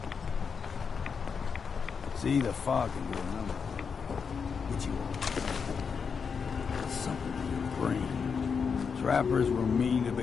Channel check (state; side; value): quieter; right; 6.0 dB